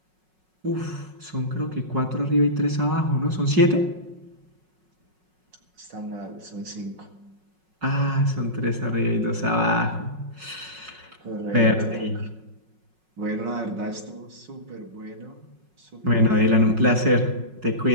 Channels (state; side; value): late; left; 5.4 ms